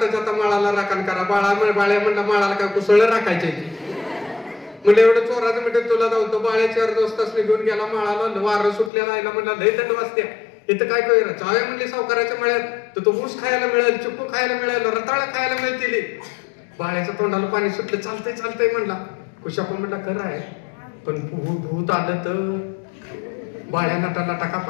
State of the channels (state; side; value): drops out; right; at 8.9 s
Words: आता माळाला राखण करा. बाळ्या म्हणला माळाला काय कुसळ राखायचे म्हणजे एवढं चोराचं म्हणजे तुला जाऊ. बाळ्याच्या 4 दोस्त घेऊन गेला माळाला. वारं सुटलेला आयला म्हणला लय थंड वाजते, इथं काय कळलं? जाऊया म्हणले सावकाराच्या मळ्यात, तर तो ऊस खायला मिळेल, चिप्पू खायला मिळेल, रताळ खायला मिळतील. बाळ्याच्या तोंडाला पाणी सुटलं. चालतंय चालतंय म्हणला. कुशाप्पा म्हणला खरं आहे, पण भूत आलं तर? बाळ्या नटाला टाका